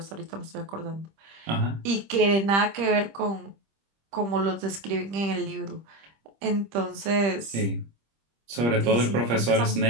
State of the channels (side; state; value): left; late; 25 ms